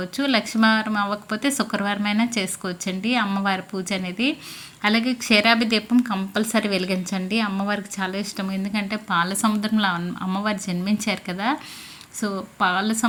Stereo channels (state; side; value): identical; both; correlation 1.00